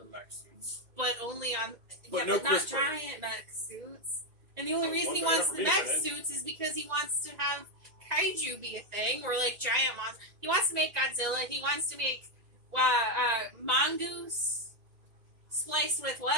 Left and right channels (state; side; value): late; left; 2.1 ms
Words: mech suits. but only on But yeah, no but not CRISPR. giant mech suits. And the only Oh, reason one he better wants for the me, mech then. suits is because he wants to have kaiju be a thing, or like giant monsters. He wants to make Godzilla. He wants to make mongoose spliced with